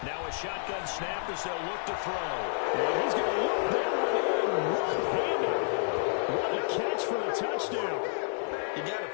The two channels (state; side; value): silent; right; 58 dB below the other